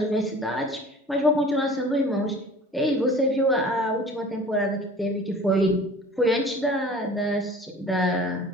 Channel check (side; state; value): both; normal; correlation 0.44